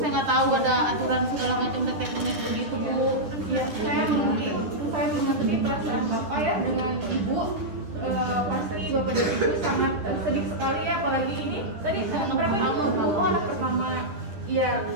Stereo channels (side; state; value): left; late; 10 ms